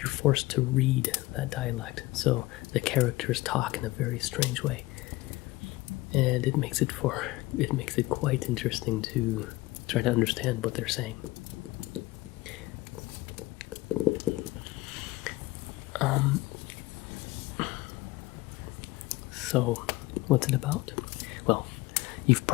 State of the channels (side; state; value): right; quieter; 19.8 dB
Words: forced to read that dialect. So the characters talk in a very strange way, and it makes it quite interesting to try to understand what they're saying. So, what's it about? Well, you've